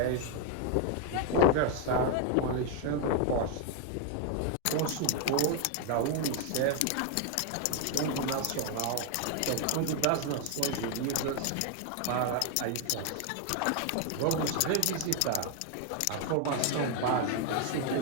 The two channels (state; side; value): different; both; correlation 0.01